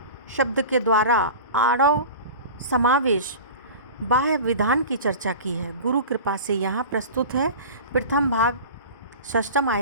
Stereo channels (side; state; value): both; inverted; correlation -0.35